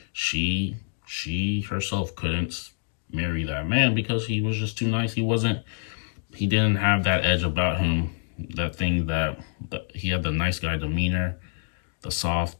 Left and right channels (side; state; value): right; silent; digital silence